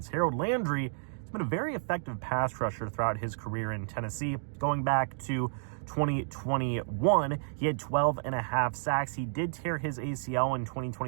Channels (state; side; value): silent; left; digital silence